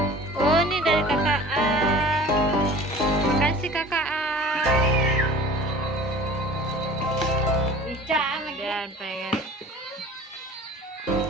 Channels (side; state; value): both; normal; correlation 0.43